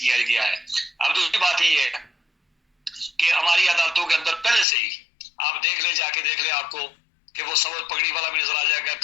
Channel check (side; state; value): right; drops out; at 4.7 s